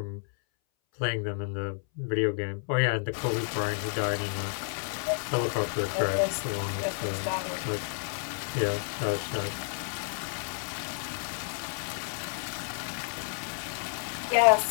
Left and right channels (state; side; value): silent; right; 57 dB below the other